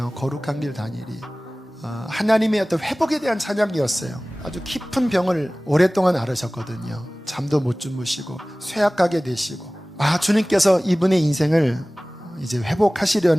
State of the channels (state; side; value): normal; both; correlation 0.98